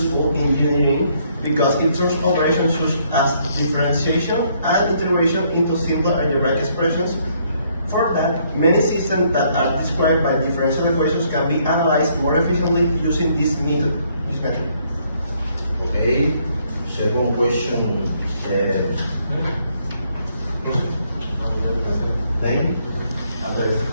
in engineering because it turns operations such as differentiation and integration into simple algebraic expressions. For that, many systems that are described by differential equations can be analyzed more efficiently using this method. Okay, second question. Name?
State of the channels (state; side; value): inverted; both; correlation -0.69